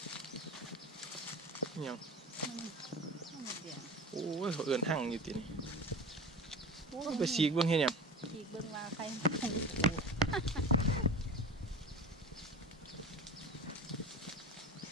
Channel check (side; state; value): both; normal; correlation 0.33